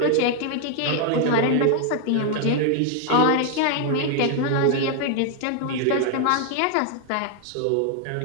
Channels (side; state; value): both; different; correlation 0.00